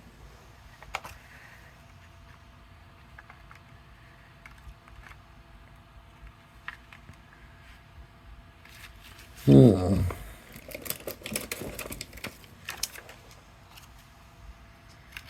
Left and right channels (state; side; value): identical; both; correlation 1.00